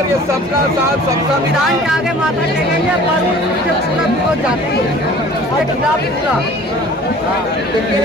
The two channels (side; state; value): both; normal; correlation 0.47